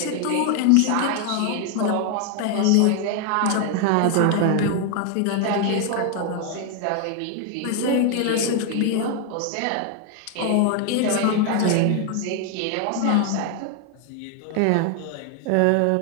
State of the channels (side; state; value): both; different; correlation 0.01